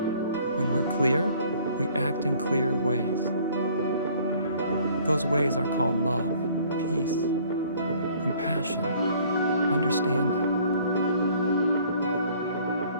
When we're clear, we act in clear ways. Those ways are called love, peace, compassion, understanding.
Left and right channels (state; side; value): inverted; both; correlation -0.56